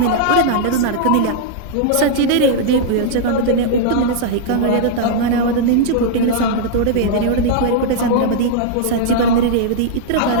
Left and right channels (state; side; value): different; both; correlation -0.01